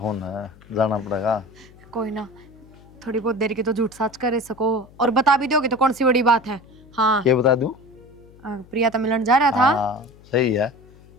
है, जाना पड़ेगा। कोई ना, थोड़ी बहुत देर की तो झूठ साच कर सको, और बता भी दोगे तो कौन सी बड़ी बात है। हाँ क्या बता दूं? प्रिया तो मिलन जा रहा था। हाँ सही है,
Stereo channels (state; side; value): noise; left; hum, 24 dB below the sound